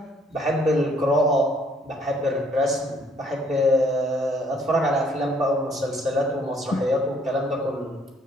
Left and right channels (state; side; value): normal; both; correlation 0.63